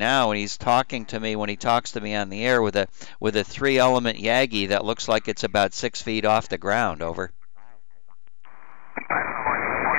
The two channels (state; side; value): silent; right; digital silence